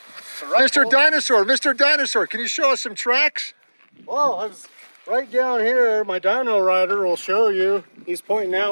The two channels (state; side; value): inverted; both; correlation -1.00